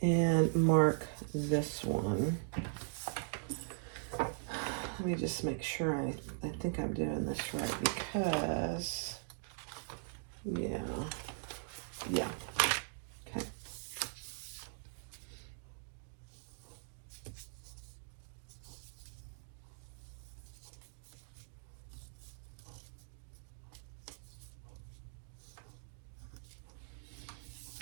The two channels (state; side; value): silent; left; digital silence